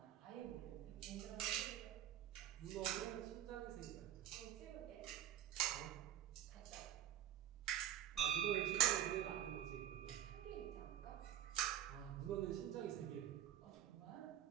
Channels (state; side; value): quieter; left; 11.2 dB